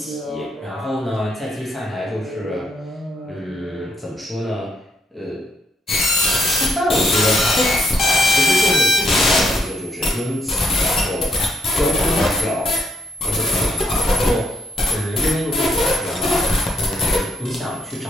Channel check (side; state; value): both; normal; correlation 0.74